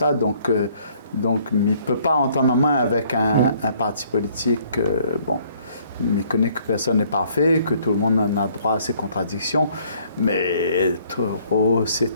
Donc, il ne peut pas entendre en main avec un parti politique. Bon. Mais connaît que personne n'est parfait, que tout le monde en a droit à ses contradictions, mais trop, c'est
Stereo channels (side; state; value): both; inverted; correlation -0.62